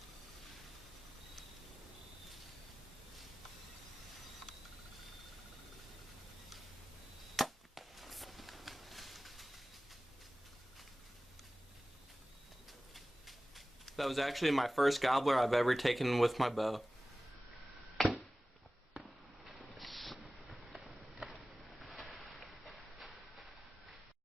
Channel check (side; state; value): both; normal; correlation 0.97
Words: That was actually my first gobbler I've ever taken with my bow.